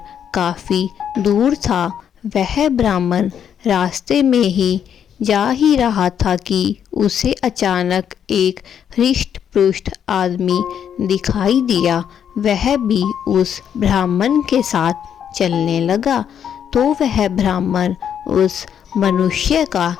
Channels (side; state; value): right; quieter; 8.6 dB